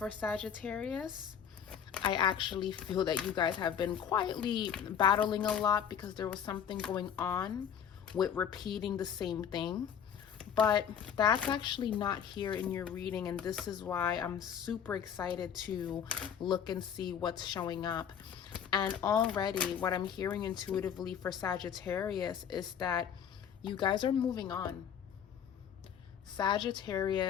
Sagittarius. I actually feel that you guys have been quietly battling a lot because there was something going on with repeating the same thing. But that's actually not here in your reading, and this is why I'm super excited to look and see what's showing up. And already what I'm hearing intuitively for Sagittarius is that you guys are moving on.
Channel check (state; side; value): quieter; right; 8.3 dB